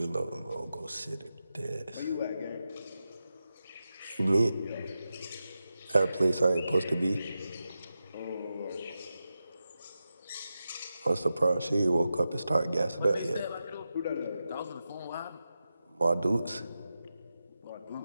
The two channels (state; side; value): inverted; both; correlation -0.91